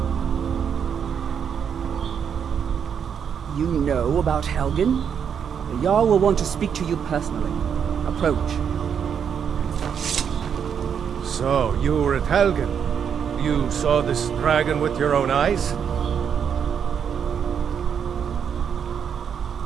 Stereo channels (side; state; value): left; quieter; 7.6 dB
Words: You know about Helgen? The Jarl will want to speak to you personally. Approach. So, you were at Helgen. You saw this dragon with your own eyes?